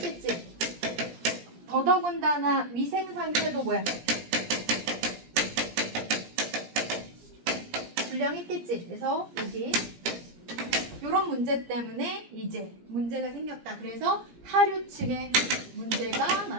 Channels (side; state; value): left; late; 17 ms